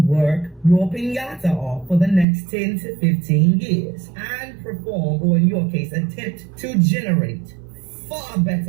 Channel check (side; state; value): left; drops out; at 2.2 s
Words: your piñata off for the next 10 to 15 years and perform, or in your case, attempt to generate far